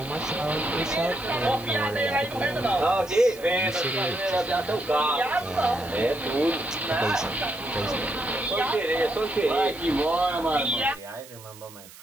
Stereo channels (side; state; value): right; noise; hiss, 19 dB below the sound